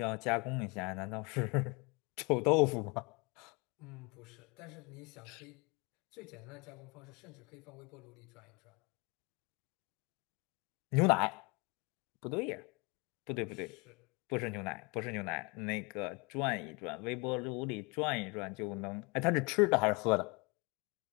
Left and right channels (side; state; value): right; quieter; 29.2 dB